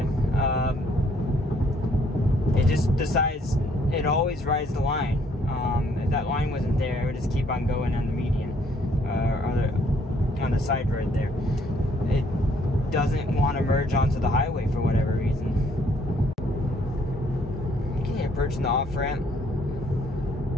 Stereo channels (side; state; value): both; normal; correlation 0.66